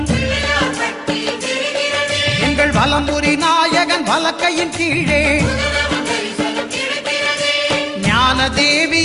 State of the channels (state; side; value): identical; both; correlation 1.00